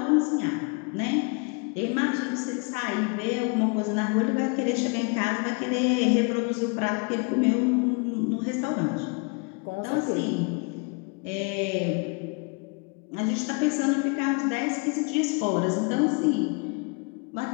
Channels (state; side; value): quieter; right; 33.2 dB